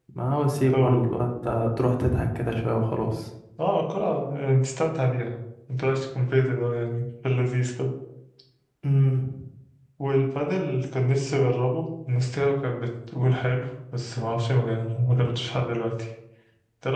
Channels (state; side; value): identical; both; correlation 1.00